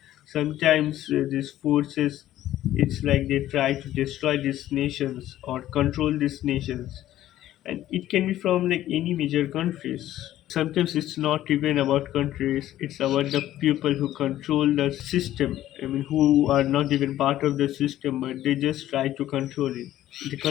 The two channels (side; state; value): right; quieter; 13.5 dB